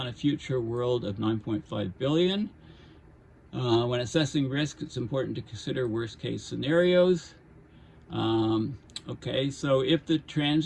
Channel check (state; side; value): identical; both; correlation 1.00